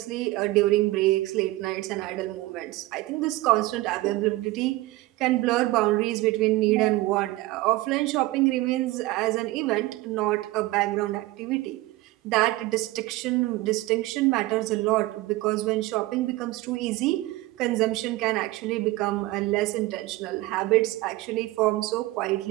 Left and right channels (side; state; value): left; quieter; 19.0 dB